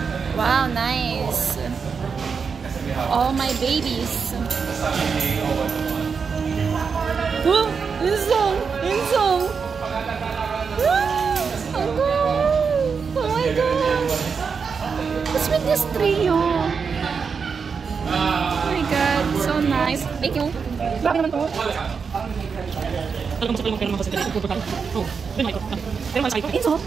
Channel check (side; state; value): left; quieter; 5.7 dB